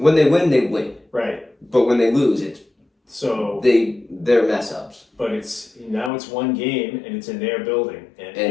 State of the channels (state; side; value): drops out; right; at 6.1 s